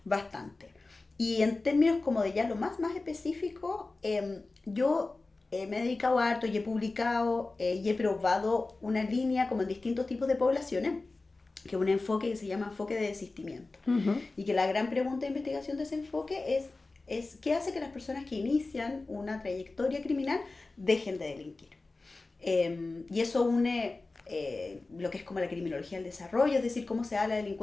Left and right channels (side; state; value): right; quieter; 3.4 dB